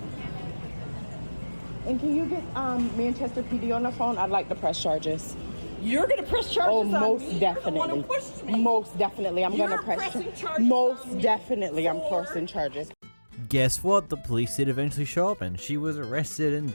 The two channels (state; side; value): inverted; both; correlation -1.00